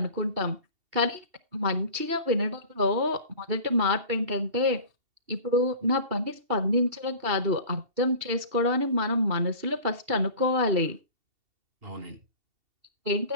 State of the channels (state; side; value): late; left; 2.7 ms